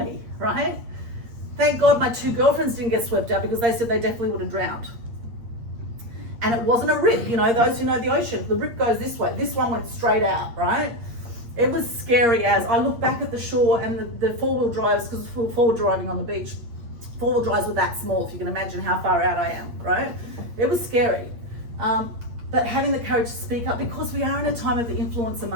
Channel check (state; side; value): late; left; 8.6 ms